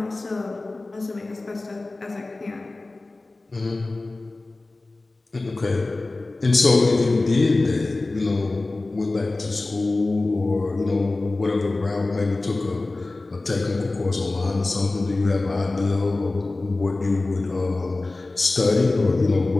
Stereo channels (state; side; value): quieter; right; 3.1 dB